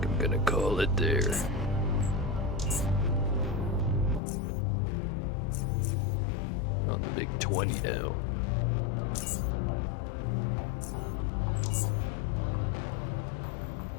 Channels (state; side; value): drops out; right; at 4.2 s